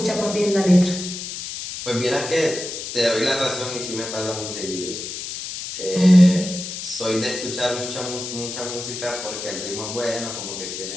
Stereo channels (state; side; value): noise; left; hiss, 7 dB below the sound